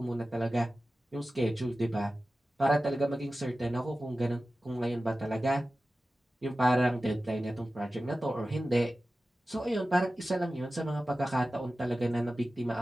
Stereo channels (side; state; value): both; normal; correlation 0.95